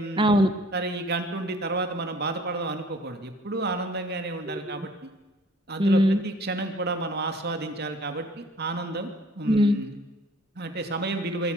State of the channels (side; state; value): both; normal; correlation 0.53